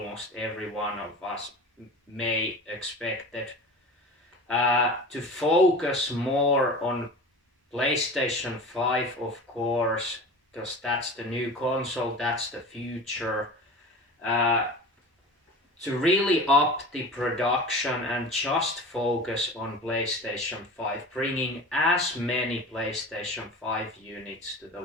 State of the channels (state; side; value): normal; both; correlation 0.35